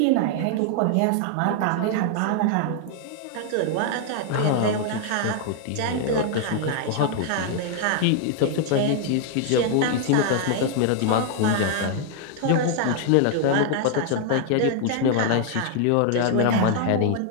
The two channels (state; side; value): different; both; correlation 0.00